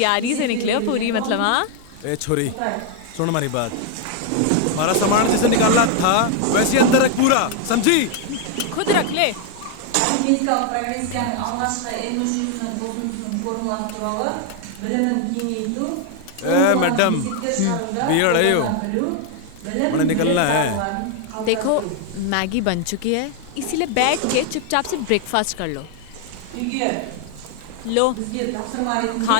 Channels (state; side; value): different; both; correlation 0.01